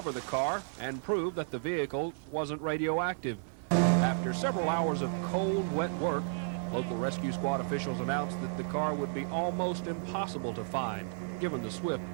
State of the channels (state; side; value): silent; left; digital silence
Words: the car, and prove that the vehicle wasn't radioactive. After several hours of cold, wet work, local rescue squad officials announced that the car would be almost impossible to find, given the swift